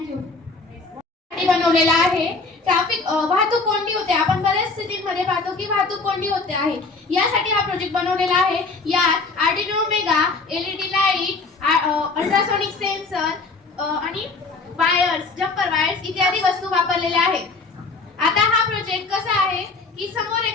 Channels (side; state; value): right; quieter; 3.9 dB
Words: बनवलेला आहे ट्रॅफिक वाहतूक कोंडी होते. आपण बऱ्याच स्थितीमध्ये पाहतो की वाहतूक कोंडी होते आहे. यासाठी हा प्रोजेक्ट बनवलेला आहे. यात Arduino mega, LED light, ultrasonic sensor आणि वायर्स, जम्पर वायर्स इत्यादी वस्तू वापरलेल्या आहेत. आता हा प्रोजेक्ट कसा आहे की समोर